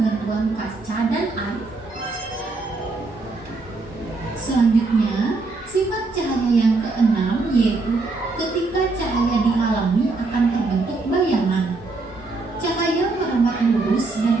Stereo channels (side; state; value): left; quieter; 3.6 dB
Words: kaca dan air. Selanjutnya, sifat cahaya yang keenam yaitu ketika cahaya dihalangi akan terbentuk bayangan. Cahaya merambat lurus dan